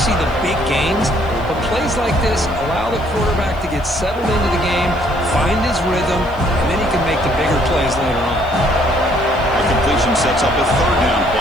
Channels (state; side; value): noise; left; hiss, 28 dB below the sound